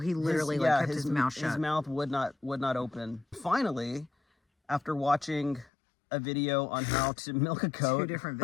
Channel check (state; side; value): drops out; right; at 5.7 s